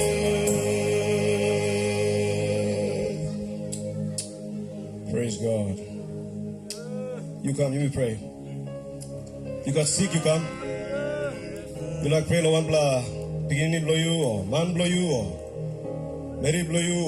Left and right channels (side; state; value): both; identical; correlation 1.00